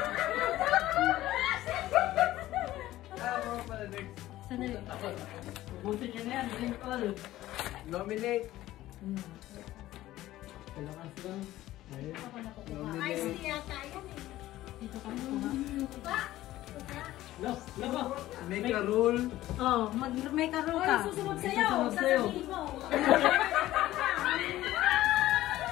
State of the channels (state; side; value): quieter; right; 15.2 dB